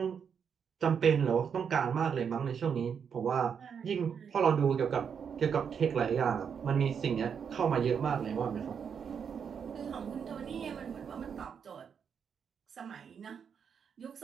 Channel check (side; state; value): left; quieter; 7.1 dB